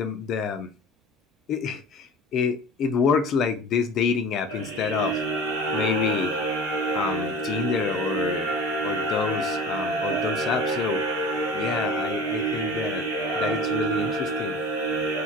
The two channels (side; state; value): both; normal; correlation 0.39